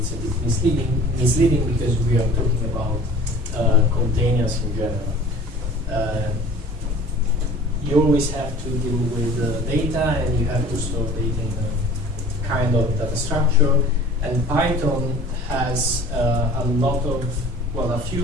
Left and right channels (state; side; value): normal; both; correlation 0.45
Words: a bit misleading because we are talking about containers in general. You always have to deal with data, and you have to store data in a kind of data structure. And Python has a lot of, well, a